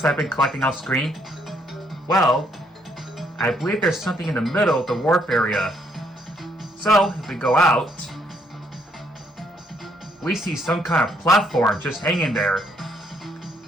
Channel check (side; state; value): both; normal; correlation 0.70